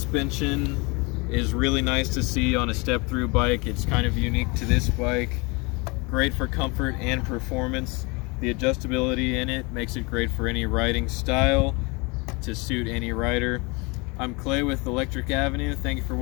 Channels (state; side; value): quieter; right; 28.0 dB